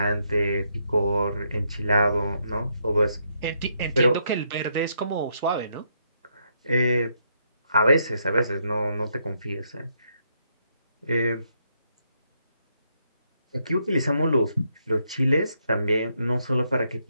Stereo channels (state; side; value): inverted; both; correlation -0.76